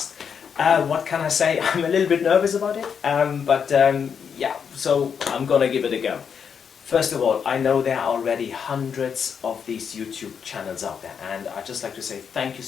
What can I say? I'm a little bit nervous about it, but yeah, so I'm gonna give it a go. First of all, I know there are already hundreds of these YouTube channels out there, and I'd just like to say thank you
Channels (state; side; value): quieter; right; 7.0 dB